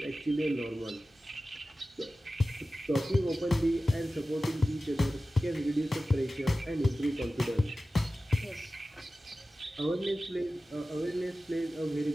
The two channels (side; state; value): both; normal; correlation 0.95